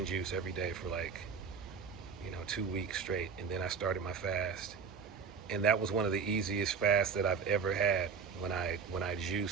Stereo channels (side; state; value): left; quieter; 5.8 dB